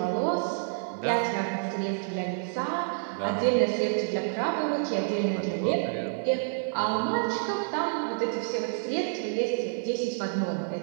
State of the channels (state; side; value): silent; left; digital silence